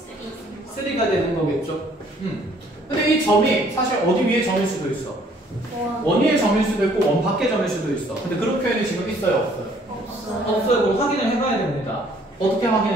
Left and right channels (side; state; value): both; normal; correlation 0.61